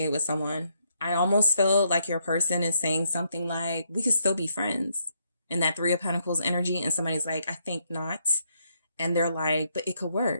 with someone. I almost feel like your person is saying something like, we could still be friends, in that Three of Pentacles energy. And somebody's like, I think not. And they're like, but it could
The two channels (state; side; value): inverted; both; correlation -0.74